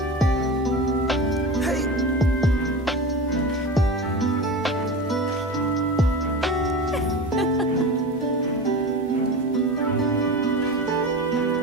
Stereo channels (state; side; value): normal; both; correlation 0.29